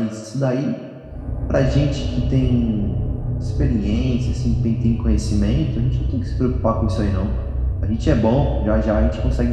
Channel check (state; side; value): identical; both; correlation 1.00